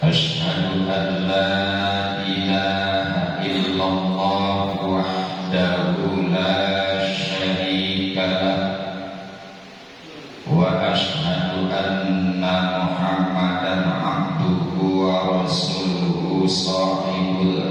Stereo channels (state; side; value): identical; both; correlation 1.00